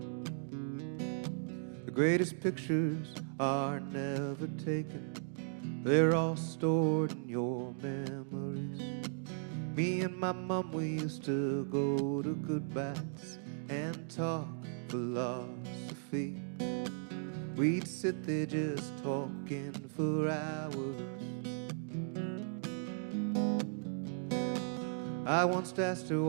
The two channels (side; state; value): left; silent; digital silence